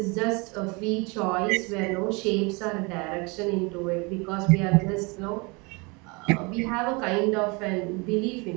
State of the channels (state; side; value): quieter; left; 28.7 dB